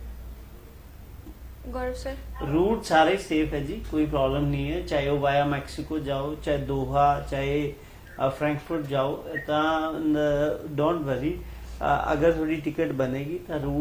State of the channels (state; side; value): identical; both; correlation 1.00